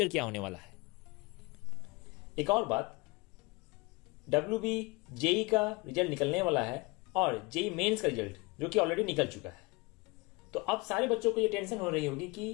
क्या होने वाला है। एक और बात, WB जेई का रिजल्ट निकलने वाला है और जेई मेंस का रिजल्ट जो कि ऑलरेडी निकल चुका है। तो अब सारे बच्चों को ये टेंशन हो रही होगी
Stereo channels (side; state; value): right; quieter; 26.0 dB